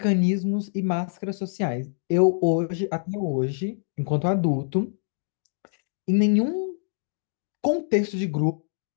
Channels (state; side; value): silent; right; digital silence